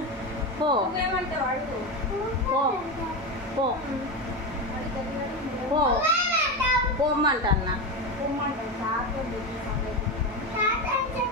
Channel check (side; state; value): both; normal; correlation 0.17